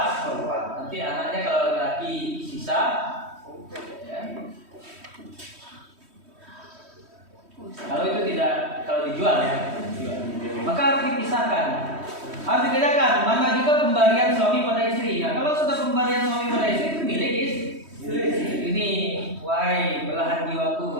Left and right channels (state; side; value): late; left; 3.1 ms